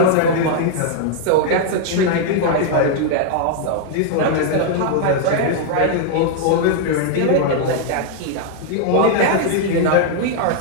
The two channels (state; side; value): different; both; correlation 0.00